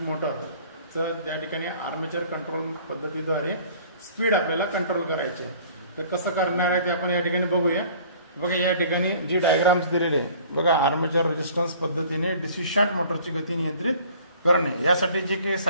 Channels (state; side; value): inverted; both; correlation -0.51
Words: मोटरचं. त्या ठिकाणी आर्मेचर कंट्रोल पद्धतीद्वारे स्पीड आपल्याला कंट्रोल करायची आहे. तर कसं करणार आहे ते आपण या ठिकाणी बघूया. बघा या ठिकाणी जी डायग्राम्स दिलेली आहे बघा, आर्मेचर रेजिस्टन्स पद्धतीने डीसी शंट मोटरची गती नियंत्रित करणे. यासाठी जे काही